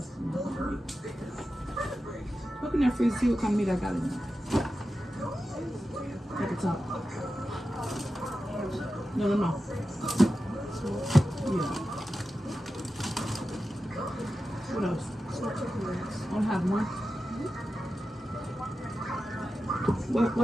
Look in that freezer, see what kind of meat I got in there. At the top. No. Yeah. What else? I don't have one.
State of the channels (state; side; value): normal; both; correlation 0.92